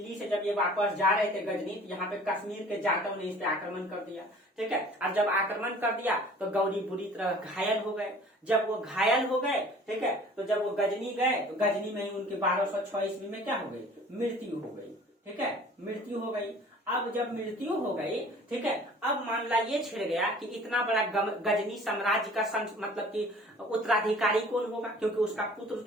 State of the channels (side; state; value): both; normal; correlation 0.48